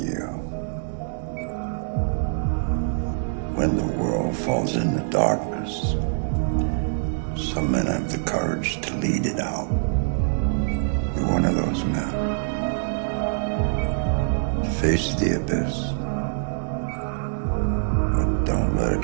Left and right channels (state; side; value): silent; left; digital silence